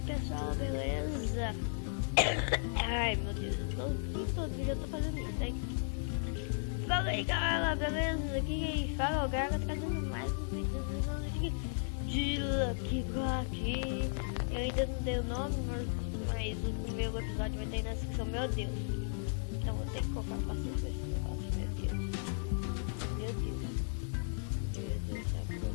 pessoal, beleza? Ai meu Deus, todo vídeo eu tô fazendo isso, hein? Fala aí galera, beleza? Aqui quem fala é o Gaga, trazendo mais um vídeo de Lucky Block. Eu ainda não dei o nome, mas o primeiro episódio vai ter na descrição, meu Deus. Então vou ter que colocar paciência com esse negócio, meu Deus. Meu Deus, sabe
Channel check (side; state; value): right; silent; digital silence